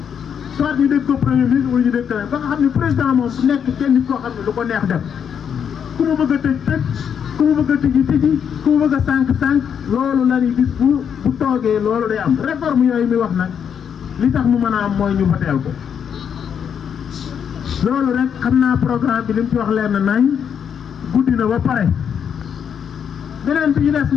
soit ñu dégg ko premier ministre wala ñu dégg ko ba nga xam ne président moom bu nekk kenn nit koo xam ne lu ko neex def ku mu bëgg a tëj ku mu bëgg a tëji ku mu bëgg a sànq loolu la ni bis bu toogee loolu day am réforme yooyu mi wax nag li tax mu mën a am mooy ñu voteel ko loolu rek xam naa programme bi li mu ci wax leer na nañ guddi na ba pare beneen bi ñu des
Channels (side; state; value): right; quieter; 7.8 dB